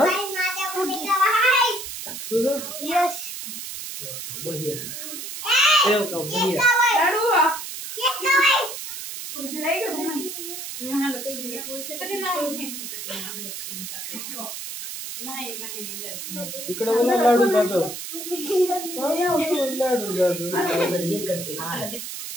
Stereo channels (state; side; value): noise; right; hiss, 8 dB below the sound